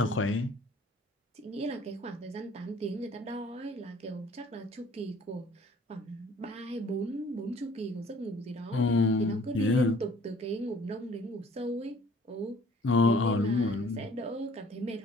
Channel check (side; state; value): both; normal; correlation 0.54